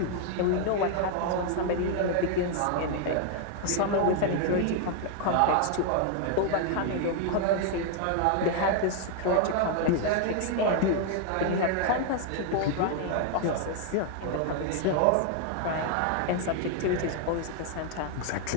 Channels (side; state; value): both; different; correlation 0.00